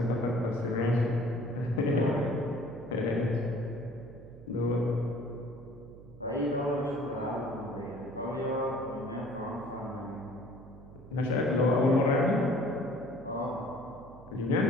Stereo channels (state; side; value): noise; right; hum, 18 dB below the sound